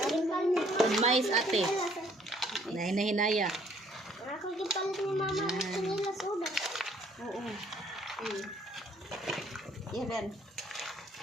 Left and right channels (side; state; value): both; normal; correlation 0.62